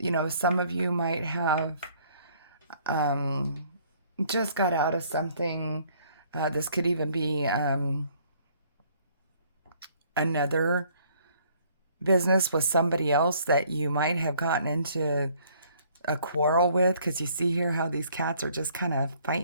of you might have just got out of something. This could even be another business with somebody else that you might have gotten into a quarrel with, because you see here how these cats are just kind of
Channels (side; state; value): both; inverted; correlation -0.61